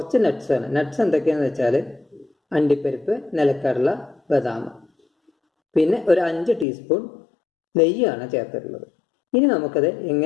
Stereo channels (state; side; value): drops out; right; at 6.7 s